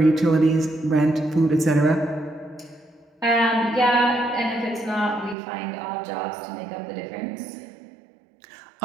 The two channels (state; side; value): drops out; left; at 5.4 s